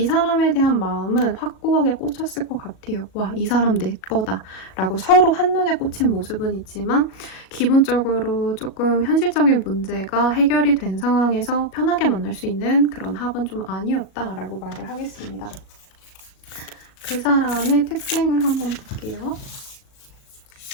사람에 대한 마음은 확고하게 꽂혔을 것 같아요. 와, 이 사람 내 거다 라고 서로 한눈에 꽂힌 모습은 있지만 기본적으로 조금 현실적인 문제가 해결이 된 상황에서 편하게 만날 수 있는 그런 합은 좀 아니었다라고 말을 하겠습니다. 그 사람의 특징을 한번 볼게요.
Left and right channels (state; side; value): late; right; 38 ms